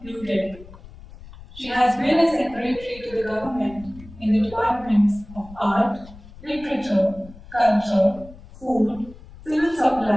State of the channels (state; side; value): noise; left; rumble, 19 dB below the sound